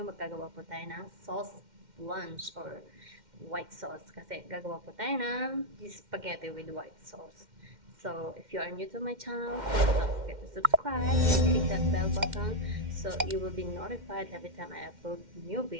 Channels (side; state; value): left; late; 2.1 ms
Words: magkagawa po tayo ng sauce lunch or white sauce. Kasi gagawa po tayo ng spaghetti with white sauce. So if you are new to my channel, please don't forget to subscribe and click that bell button so you will be notified every time I upload new